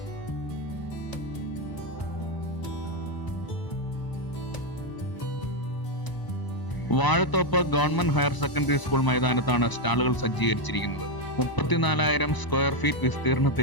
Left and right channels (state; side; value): late; right; 1.0 ms